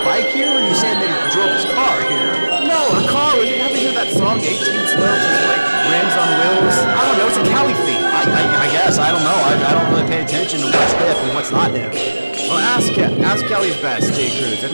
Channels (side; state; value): both; inverted; correlation -1.00